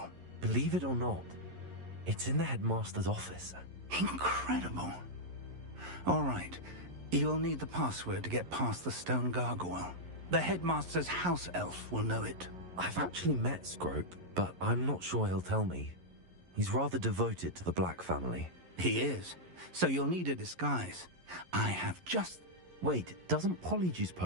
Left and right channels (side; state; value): left; late; 11 ms